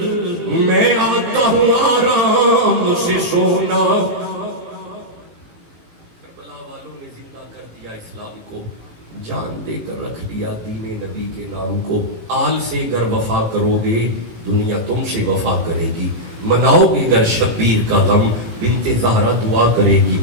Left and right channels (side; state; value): left; late; 18 ms